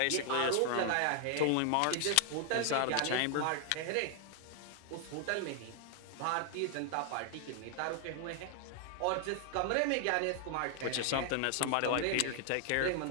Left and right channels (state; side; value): different; both; correlation 0.00